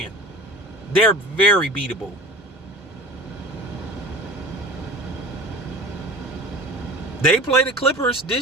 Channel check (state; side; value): normal; both; correlation 0.36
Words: They're very beatable. They play the Clippers